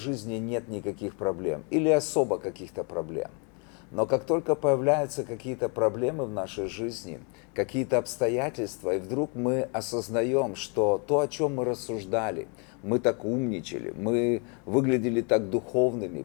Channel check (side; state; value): right; quieter; 35.4 dB